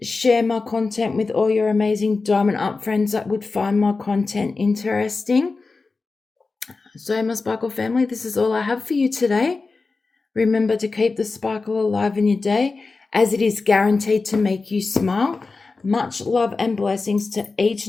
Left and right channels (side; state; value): right; quieter; 4.0 dB